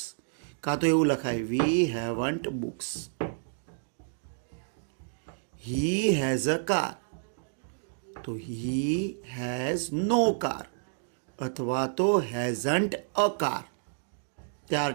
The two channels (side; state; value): left; silent; digital silence